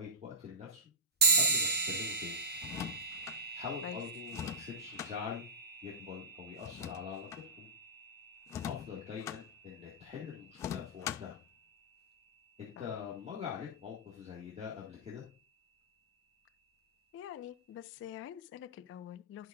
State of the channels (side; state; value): both; normal; correlation -0.17